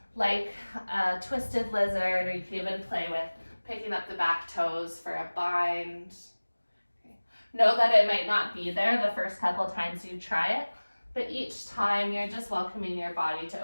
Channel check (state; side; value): inverted; both; correlation -1.00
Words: like a twisted lizard, or you can even play with picking up the back toes for a bind. Okay. Know that it might not be there the first couple times you try it, but each time you're just welcoming your body to